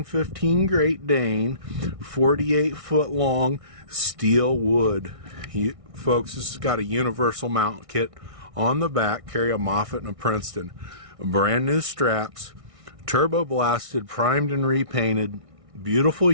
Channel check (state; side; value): late; left; 1.6 ms